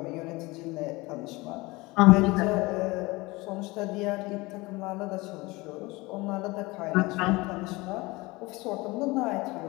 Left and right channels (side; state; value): right; quieter; 22.7 dB